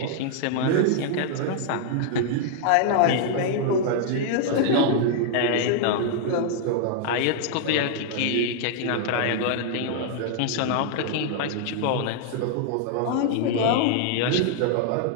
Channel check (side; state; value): both; different; correlation 0.00